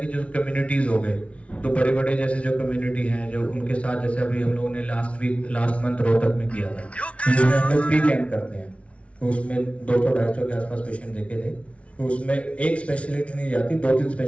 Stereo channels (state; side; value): late; right; 0.062 ms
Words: कि जो कम्युनिटीज हो गए तो बड़े बड़े जैसे जो कम्युनिटी हैं जो उनके साथ, जैसे अभी हम लोगों ने लास्ट मंथ रोहतक में किया था, जिसमें हम लोग फ्री कैंप करते हैं तो उसमें 200-250 के आसपास पेशेंट देखे थे। तो उसमें एक स्पेशलिटी नहीं जाती, 2-3